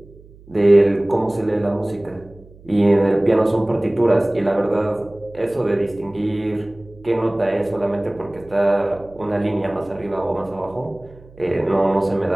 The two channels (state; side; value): noise; right; hum, 23 dB below the sound